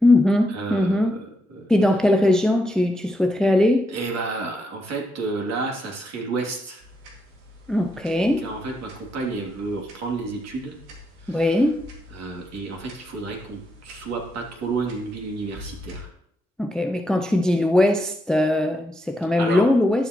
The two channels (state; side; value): normal; both; correlation 0.82